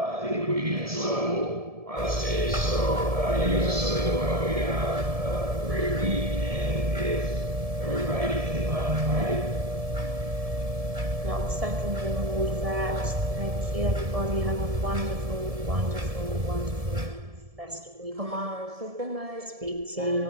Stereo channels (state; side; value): late; left; 1.7 ms